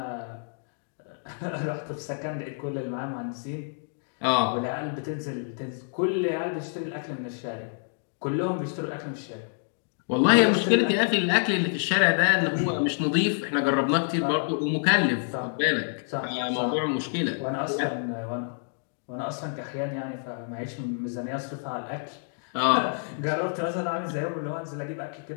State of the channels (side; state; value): right; silent; digital silence